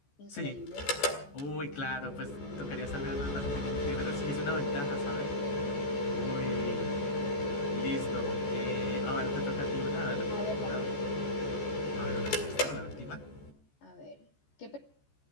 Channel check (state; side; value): late; right; 14 ms